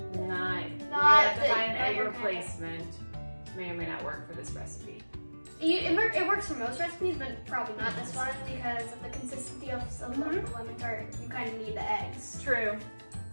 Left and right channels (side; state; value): both; inverted; correlation -1.00